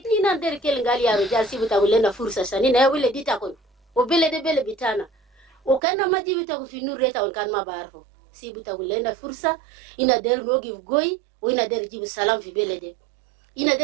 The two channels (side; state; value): left; drops out; at 5.8 s